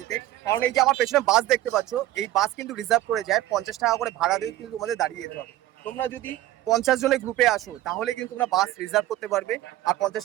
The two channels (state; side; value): quieter; left; 14.9 dB